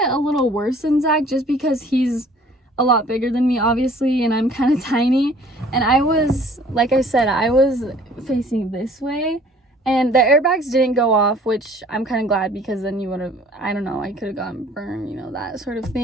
it a little worse than Zach, just because he's a lot bigger than me, obviously, and I'm kind of tiny. And I was, like I said, I was facing this way, and the airbags didn't go off, which I'm kind of glad, because then you would have, I don't know, I could have gotten burned, you know, that sort of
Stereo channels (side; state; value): both; normal; correlation 0.54